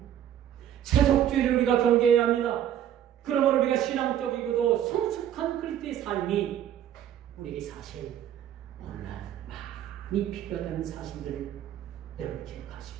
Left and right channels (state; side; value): quieter; left; 10.6 dB